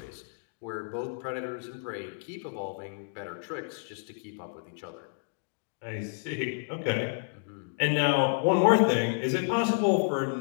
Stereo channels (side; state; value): right; silent; digital silence